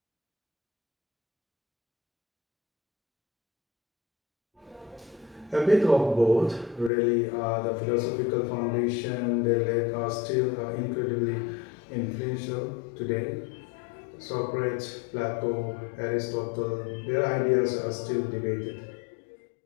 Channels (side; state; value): right; drops out; at 6.9 s